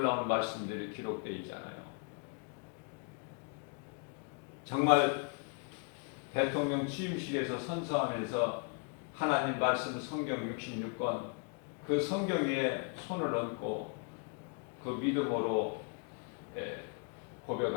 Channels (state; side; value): quieter; right; 37.7 dB